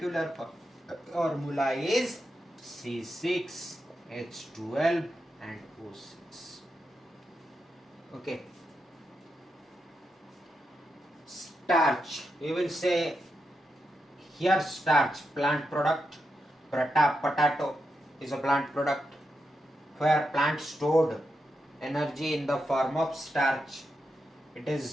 formula is C6H12 and O6. Okay. Starch, we will say here starch, plant product. Potato is a plant product where plant stored energy in the form of starch. It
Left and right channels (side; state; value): both; normal; correlation 0.86